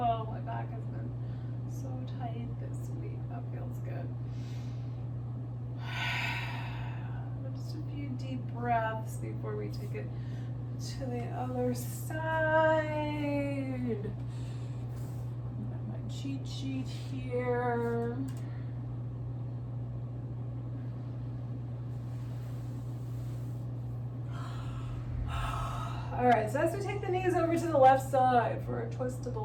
my back has been so tight this week. That feels good. Just a few deep breaths before we take it to the other side. Got my cheat sheet here. All right, so as we take the knees over to the left side for a twist to the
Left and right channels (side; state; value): both; identical; correlation 1.00